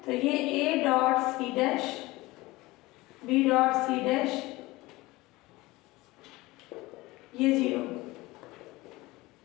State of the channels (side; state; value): right; quieter; 20.5 dB